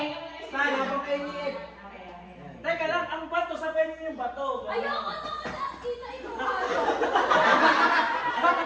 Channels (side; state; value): both; identical; correlation 1.00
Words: Paano pa kayo niit? Teka lang, ang bato, sabihin niyo yung bato. Ayoko na wala. Kita ito.